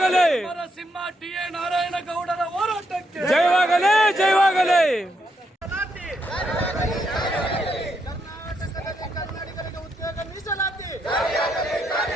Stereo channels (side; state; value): both; normal; correlation 0.79